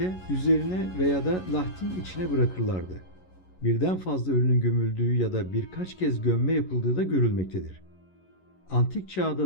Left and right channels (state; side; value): late; right; 11 ms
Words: üzerine veya da lahtin içine bırakırlardı. Birden fazla ölünün gömüldüğü ya da birkaç kez gömme yapıldığı da görülmektedir. Antik